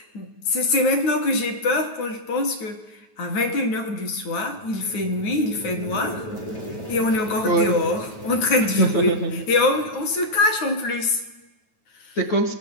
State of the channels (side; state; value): right; late; 9.3 ms